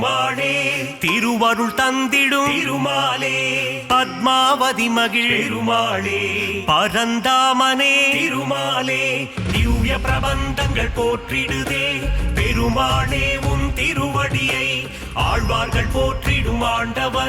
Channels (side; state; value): both; identical; correlation 1.00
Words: திருவருள் தந்திடும் திருமாலே பத்மாவதி மகிழ் பெருமாளே பரந்தாமனே திருமாலே திவ்ய பிரபந்தங்கள் போற்றிடுதே பெருமாளே உன் திருவடியை ஆழ்வார்கள் போற்றிடும்